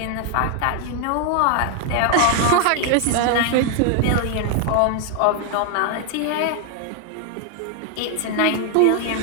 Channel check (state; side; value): different; both; correlation 0.00